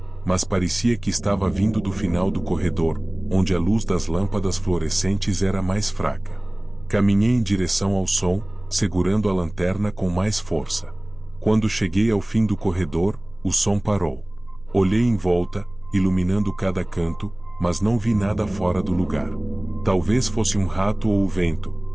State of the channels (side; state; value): right; noise; hum, 23 dB below the sound